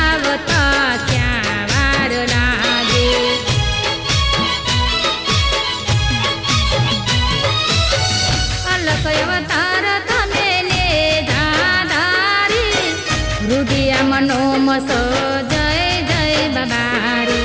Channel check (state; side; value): identical; both; correlation 1.00